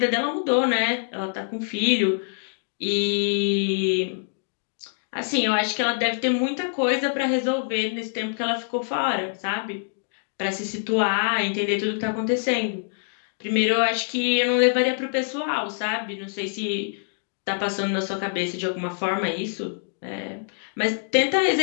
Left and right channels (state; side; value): silent; right; digital silence